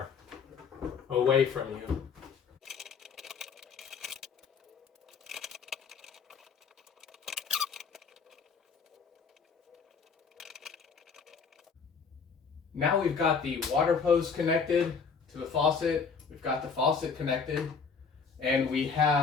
away from you. Now we've got the water hose connected to the faucet, we've got the faucet connected, and we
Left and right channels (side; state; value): right; quieter; 5.6 dB